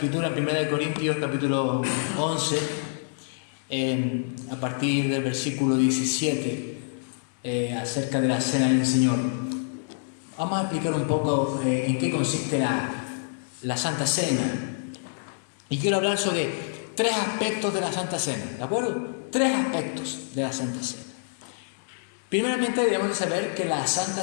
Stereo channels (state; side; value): silent; right; digital silence